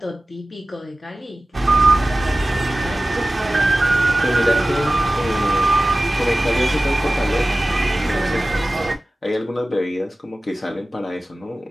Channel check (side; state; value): both; normal; correlation 0.96